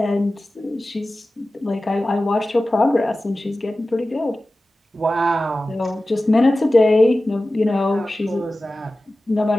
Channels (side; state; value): both; normal; correlation 0.96